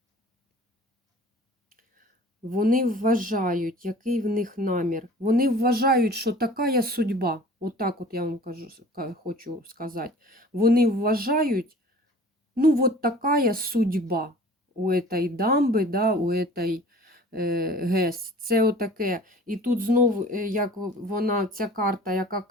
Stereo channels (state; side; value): normal; both; correlation 0.46